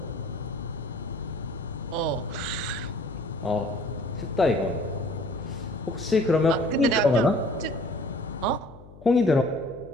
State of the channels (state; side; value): noise; left; hum, 20 dB below the sound